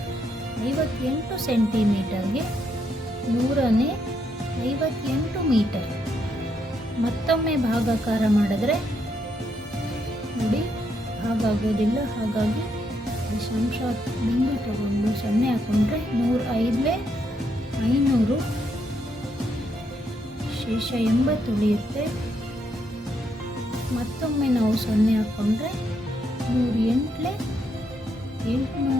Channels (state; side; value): normal; both; correlation 0.77